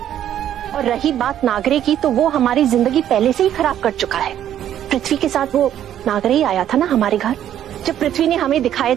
और रही बात नागरे की, तो वो हमारी जिंदगी पहले से ही खराब कर चुका है। पृथ्वी के साथ वो नागरे ही आया था ना हमारे घर, जब पृथ्वी ने हमें दिखाए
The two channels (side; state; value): left; quieter; 10.9 dB